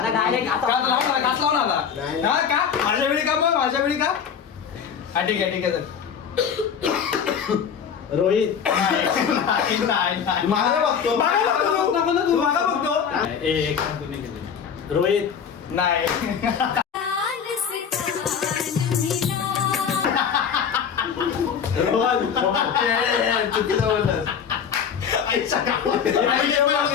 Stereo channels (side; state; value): right; quieter; 7.3 dB